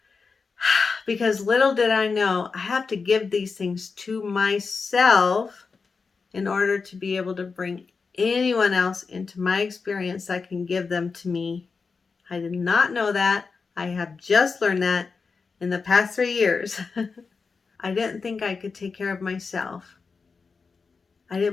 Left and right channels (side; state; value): right; quieter; 4.8 dB